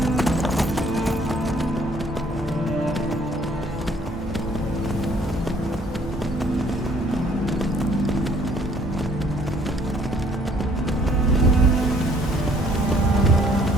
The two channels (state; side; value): normal; both; correlation 0.61